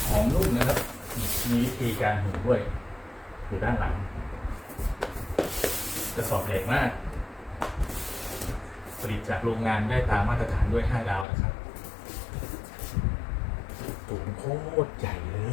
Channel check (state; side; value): drops out; right; at 11.2 s